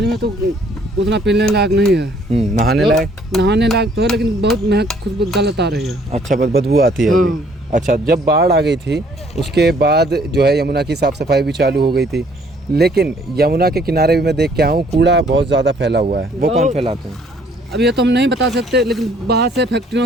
में तो उतना पीने लायक नहीं है। नहाने तो लायक? नहाने लायक तो है, लेकिन बहुत महक खुशबू गलत आ रही है। अच्छा, बदबू आती है अभी। अच्छा, जब बाढ़ आ गई थी उसके बाद जो है यमुना की साफ़ सफाई भी चालू हो गई थी, लेकिन यमुना के किनारे भी मैं देख के आऊँ कूड़ा बहुत ज़्यादा फैला हुआ है। वो कौन फैलाते हैं? अब ये तो हम नहीं बता सकते, लेकिन बाहर से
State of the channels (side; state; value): both; normal; correlation 0.62